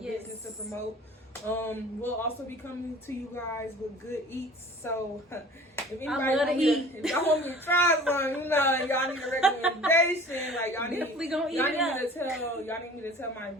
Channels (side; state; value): both; normal; correlation 0.44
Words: to promote. We'll also be coming to you guys with good eats. So if anybody if y'all want me to try some, you know, and y'all need a recommendation, like y'all need me to tell my